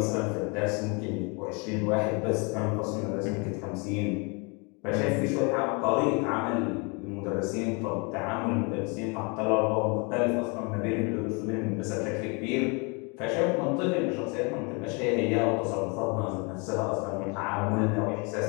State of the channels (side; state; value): right; quieter; 31.8 dB